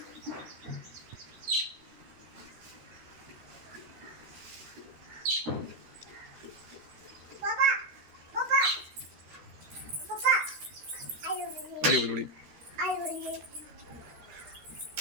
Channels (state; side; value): late; left; 13 ms